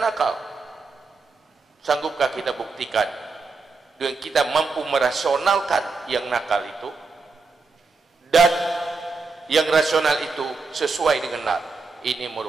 nakal. Sanggupkah kita buktikan dengan kita mampu merasionalkan yang nakal itu dan yang rasional itu sesuai dengan nakal? Ini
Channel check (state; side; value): quieter; left; 4.3 dB